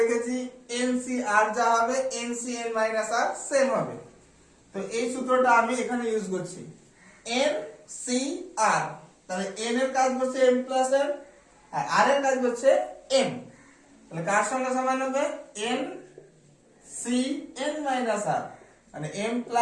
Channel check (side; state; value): both; identical; correlation 1.00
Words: n c r যা হবে n c n minus r same হবে। তো এই সূত্রটা আমি এখানে ইউজ করছি, n c r। তাহলে n এর কাজ হচ্ছে m প্লাস n, আর r এর কাজ হচ্ছে m। তাহলে কার সঙ্গে সমান হবে, n c n minus r, মানে m